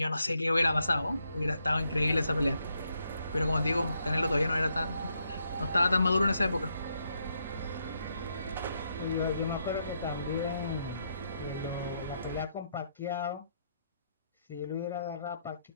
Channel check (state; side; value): inverted; both; correlation -0.78